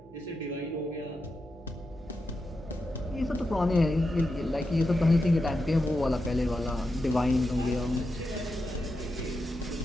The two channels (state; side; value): normal; both; correlation 0.88